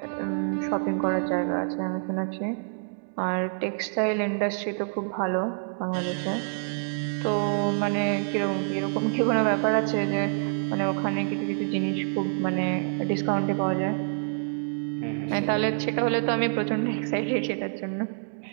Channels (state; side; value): silent; left; digital silence